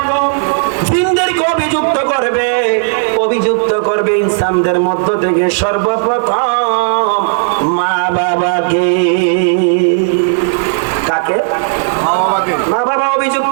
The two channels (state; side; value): silent; left; digital silence